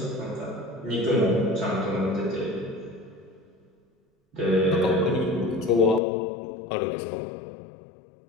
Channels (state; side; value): drops out; right; at 6.0 s